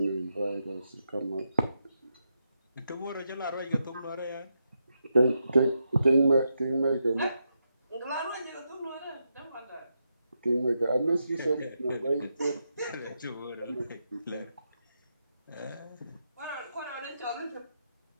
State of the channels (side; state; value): both; inverted; correlation -0.84